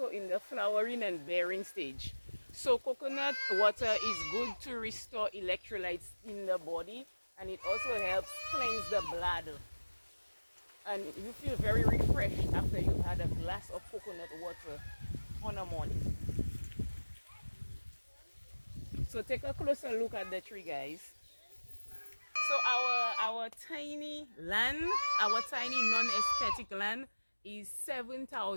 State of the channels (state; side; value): inverted; both; correlation -1.00